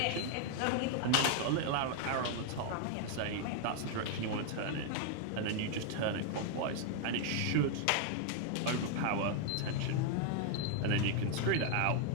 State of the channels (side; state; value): both; different; correlation 0.00